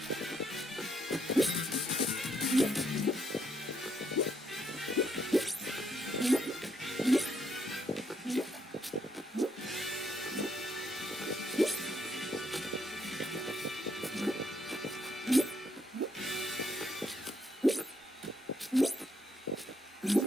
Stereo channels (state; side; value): normal; both; correlation 0.74